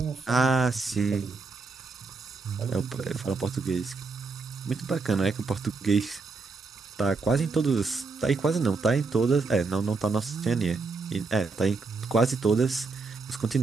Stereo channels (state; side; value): quieter; left; 4.1 dB